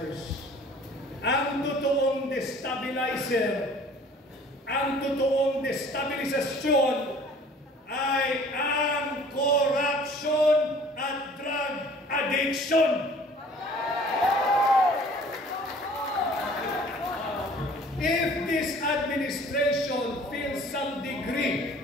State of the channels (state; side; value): normal; both; correlation 0.51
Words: Ang totoong destabilizer, ang totoong destabilisasyon ay ang corruption at drug addiction. If this administration feels some